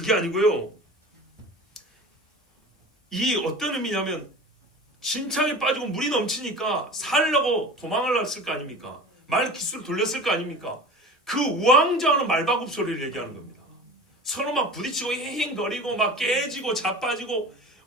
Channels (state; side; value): normal; both; correlation 0.36